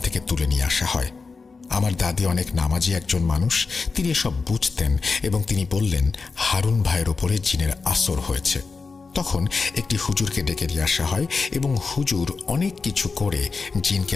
থেকে তুলে নিয়ে আসা হয়। আমার দাদি অনেক নামাজি একজন মানুষ, তিনি এসব বুঝতেন এবং তিনি বললেন হারুন ভাইয়ের ওপরে জিনের আসর হয়েছে। তখন একটি হুজুরকে ডেকে নিয়ে আসা হয় এবং হুজুর অনেক কিছু করে জিনকে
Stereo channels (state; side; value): quieter; right; 4.5 dB